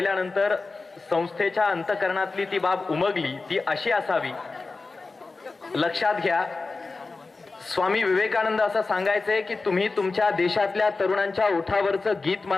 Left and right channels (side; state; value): right; quieter; 3.8 dB